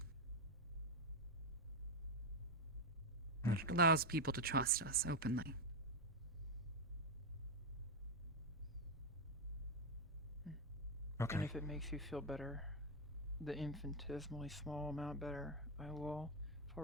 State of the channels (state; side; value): normal; both; correlation 0.05